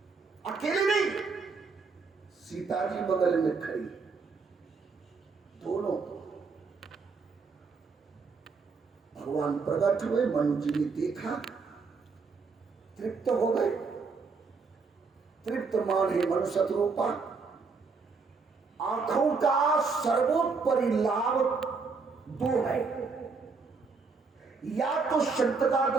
अकेले नहीं, सीता जी बगल में खड़ी, दोनों भगवान प्रकट हुए। मनु जी ने देखा, तृप्त हो गए। तृप्त माने मनु शत्रुपा। आंखों का सर्वोपरि लाभ दो है, या तो संत का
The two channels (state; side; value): quieter; left; 4.7 dB